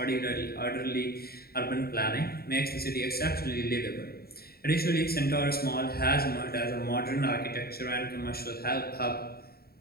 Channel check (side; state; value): right; late; 0.45 ms